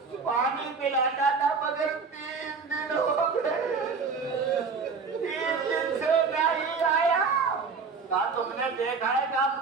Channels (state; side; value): quieter; left; 5.0 dB